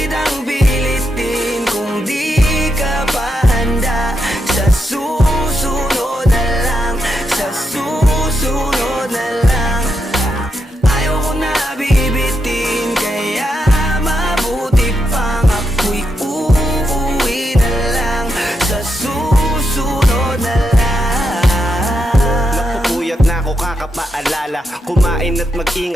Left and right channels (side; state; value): both; normal; correlation 0.83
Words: pilitin kung di ka pa handa. Sa susunod na lang, sa susunod na lang. Ayaw ko na bibitin, kaya mabuti pang ako'y uuwi na lang. Sa susunod na lang. Napupuyat na ako kakapaalala, kumain at